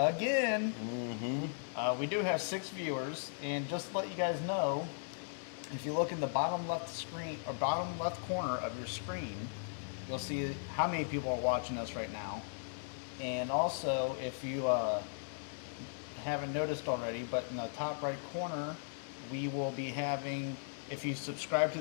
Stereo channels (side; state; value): right; silent; digital silence